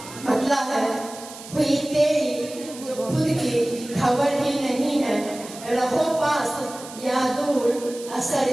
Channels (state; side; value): noise; right; hiss, 15 dB below the sound